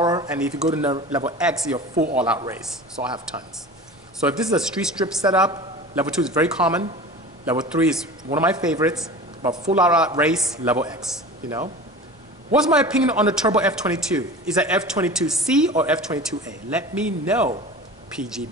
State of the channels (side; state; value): both; normal; correlation 0.36